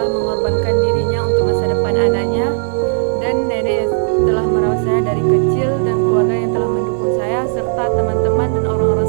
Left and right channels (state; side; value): silent; left; digital silence